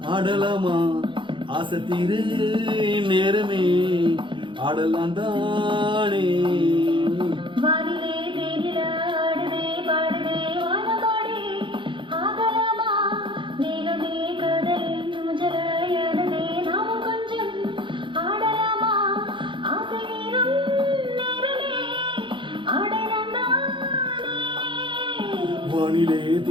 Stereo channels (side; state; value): left; late; 0.24 ms